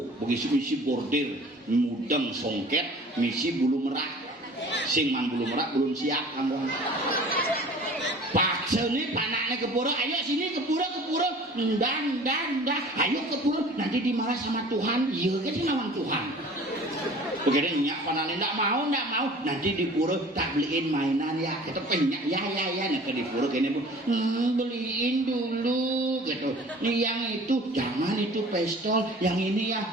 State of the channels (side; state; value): both; normal; correlation 0.45